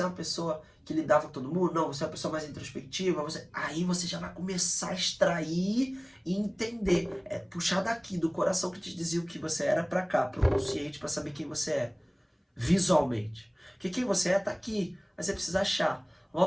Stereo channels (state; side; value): identical; both; correlation 1.00